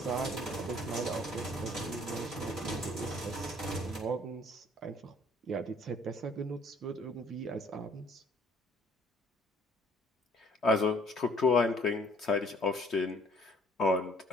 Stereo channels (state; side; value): normal; both; correlation 0.59